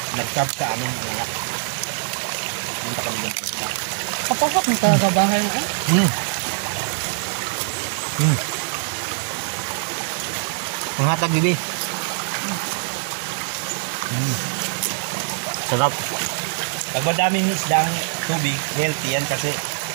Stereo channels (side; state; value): left; silent; digital silence